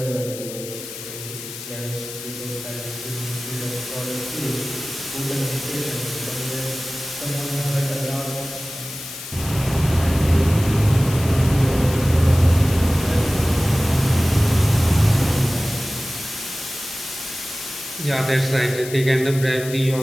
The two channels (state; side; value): noise; left; hiss, 11 dB below the sound